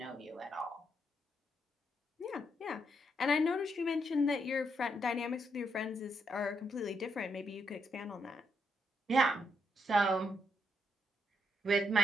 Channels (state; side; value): normal; both; correlation 0.77